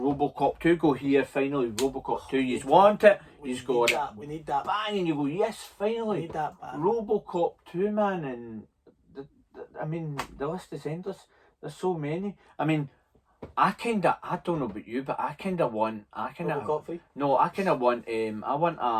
2, go here, finally, Robocop 2, you want it, you just got it. We need that. Bang, and you go, yes, We finally. need that back. Robocop 2, man, and the list is endless. There's so many. I don't know about you, but Robocop 3. no, I kind of want I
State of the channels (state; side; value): identical; both; correlation 1.00